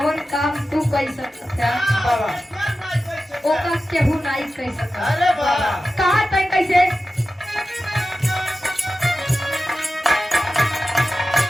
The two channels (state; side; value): normal; both; correlation 0.93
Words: काम तू कर सकता ओका केहू नहीं कर सकता कहा तय कैसे